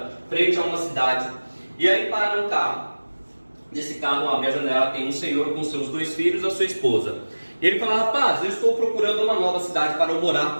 frente a uma cidade. E aí para um carro. Nesse carro, abre a janela, tem um senhor com seus 2 filhos e a sua esposa. E ele fala, rapaz, eu estou procurando uma nova cidade para eu morar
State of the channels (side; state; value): both; inverted; correlation -1.00